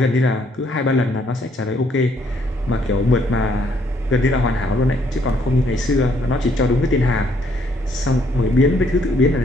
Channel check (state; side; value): normal; both; correlation 0.68